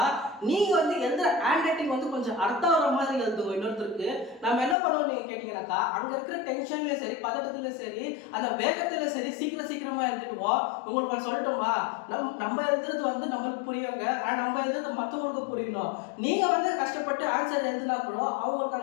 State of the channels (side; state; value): right; drops out; at 4.8 s